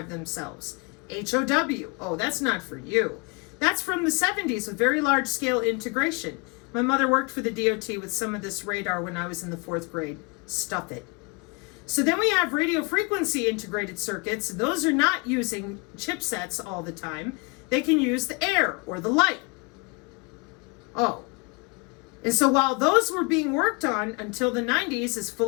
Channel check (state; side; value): quieter; right; 29.8 dB